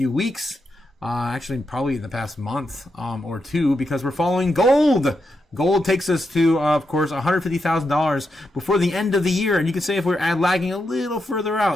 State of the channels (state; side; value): normal; both; correlation 0.85